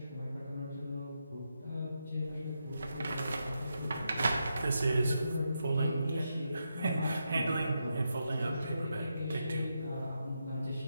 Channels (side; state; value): both; inverted; correlation -0.85